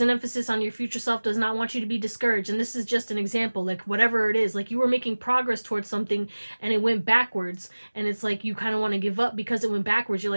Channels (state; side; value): inverted; both; correlation -1.00